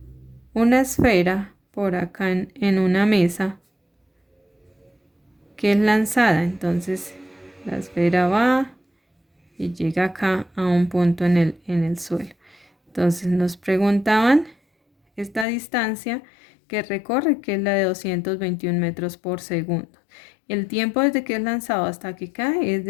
esfera por acá en una mesa que es lanzada. Entonces la esfera va y llega acá a un punto en el suelo. Entonces nos preguntaban esta distancia que recorre, que es la de 221 metros por segundo. El tiempo desde que es lanzado hasta que cae es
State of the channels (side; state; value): right; drops out; at 15.5 s